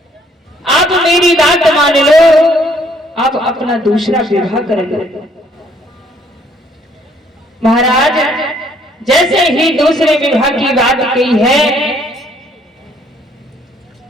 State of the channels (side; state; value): both; normal; correlation 0.64